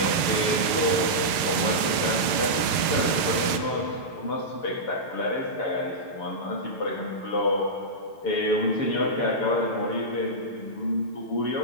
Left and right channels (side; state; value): right; late; 6.5 ms